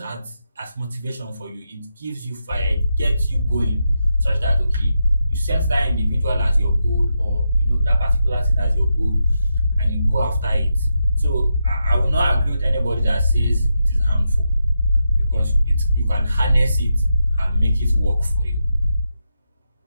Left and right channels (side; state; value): both; inverted; correlation -0.86